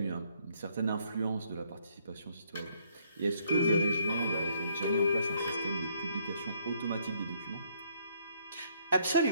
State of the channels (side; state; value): both; inverted; correlation -0.68